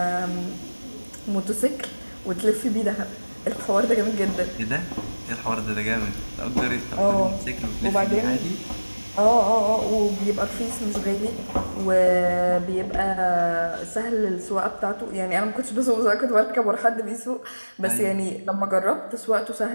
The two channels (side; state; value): both; inverted; correlation -1.00